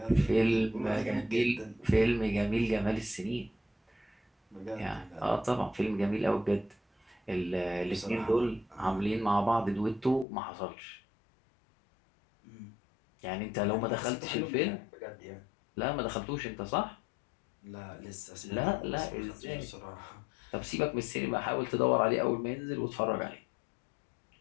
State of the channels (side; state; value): right; drops out; at 10.2 s